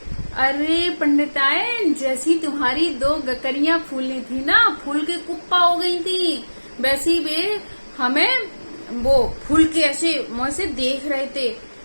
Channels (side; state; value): both; inverted; correlation -1.00